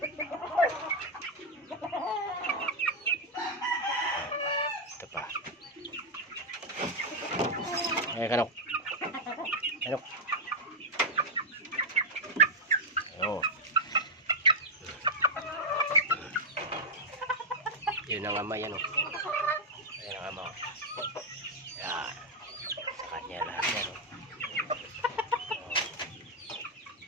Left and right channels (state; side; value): normal; both; correlation 0.01